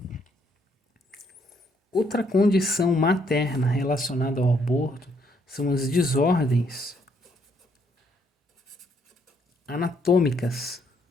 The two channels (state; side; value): normal; both; correlation 0.70